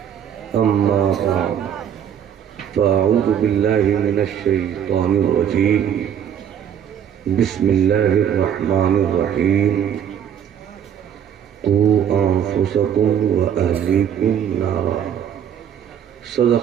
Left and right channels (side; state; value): left; quieter; 9.0 dB